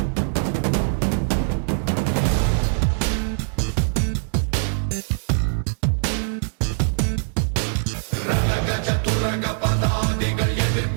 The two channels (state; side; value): silent; left; digital silence